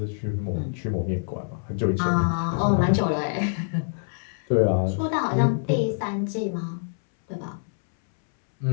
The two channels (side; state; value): right; silent; 61 dB below the other